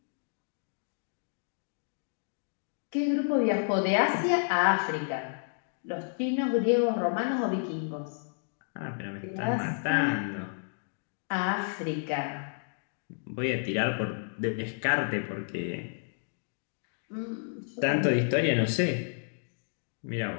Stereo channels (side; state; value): right; silent; digital silence